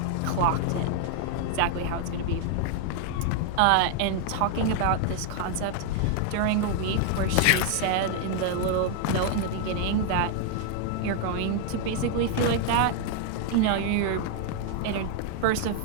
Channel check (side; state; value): both; different; correlation 0.00